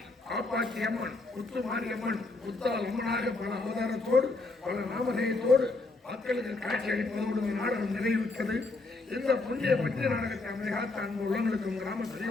காப்பாற்றி அம்மன் முத்து மாரியம்மன் முத்தால் அம்மனாக பல அவதாரத்தோடு பல நாமதேயத்தோடு மக்களுக்கு காட்சி அளிப்பதோடு நாடகம் நிறைவுற்றது. இந்த புண்ணிய பற்றிய நாடகத்தை அமைதிகாத்த அன்பு உள்ளவர்களுக்கும் கிராம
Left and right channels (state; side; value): quieter; right; 3.4 dB